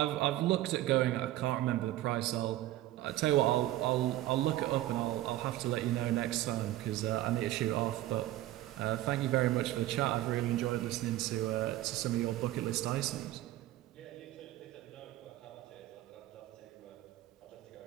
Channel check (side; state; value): left; quieter; 15.2 dB